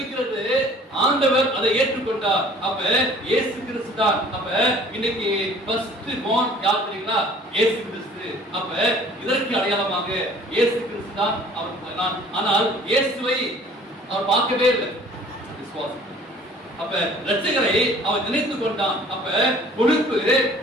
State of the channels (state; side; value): normal; both; correlation 0.51